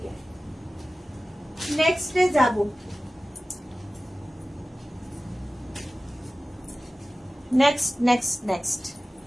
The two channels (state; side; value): normal; both; correlation 0.96